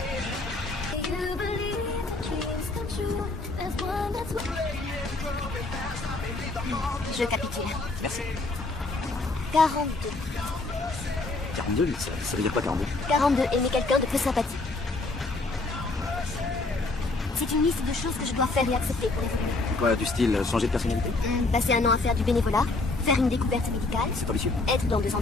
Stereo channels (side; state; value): right; quieter; 3.3 dB